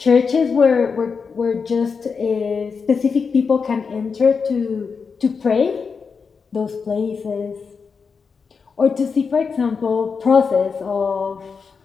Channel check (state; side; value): quieter; right; 5.4 dB